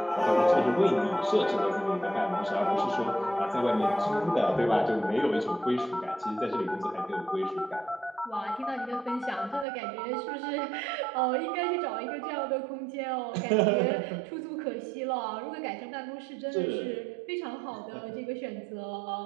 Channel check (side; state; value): left; drops out; at 9.7 s